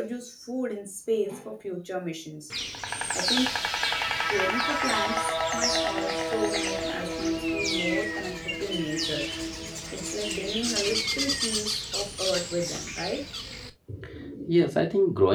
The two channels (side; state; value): both; identical; correlation 1.00